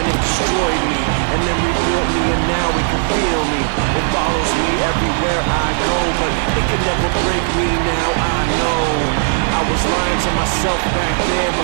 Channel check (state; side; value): silent; left; digital silence